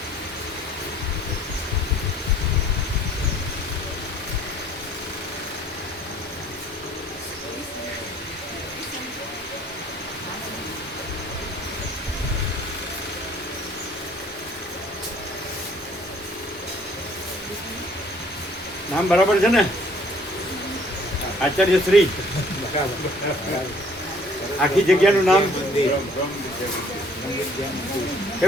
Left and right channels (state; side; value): normal; both; correlation 0.58